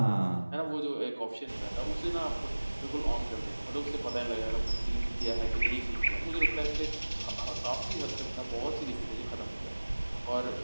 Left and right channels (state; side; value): inverted; both; correlation -1.00